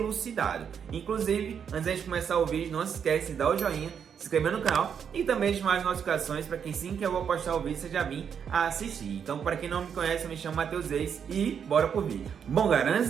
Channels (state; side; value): quieter; left; 7.5 dB